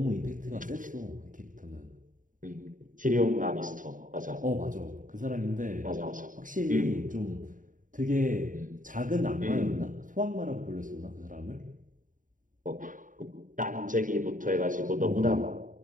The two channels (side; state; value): left; late; 0.38 ms